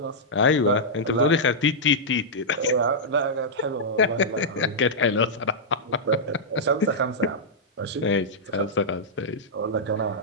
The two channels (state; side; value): normal; both; correlation -0.09